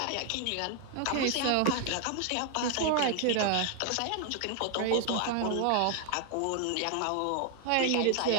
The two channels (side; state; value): both; different; correlation 0.00